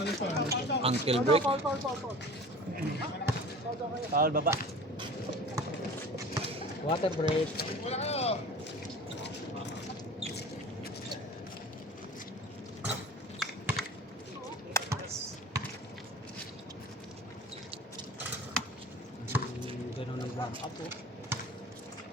Ankle break. Foul baba. Water break. Ganun ang warm up oh.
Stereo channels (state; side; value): normal; both; correlation 0.40